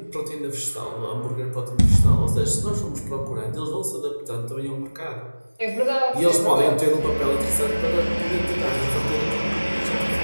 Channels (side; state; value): both; inverted; correlation -1.00